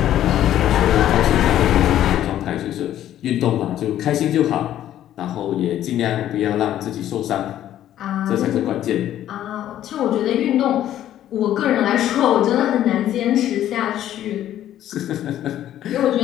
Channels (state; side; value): quieter; right; 12.0 dB